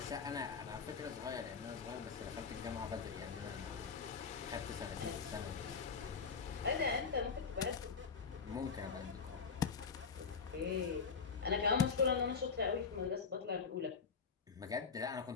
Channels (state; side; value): quieter; right; 5.5 dB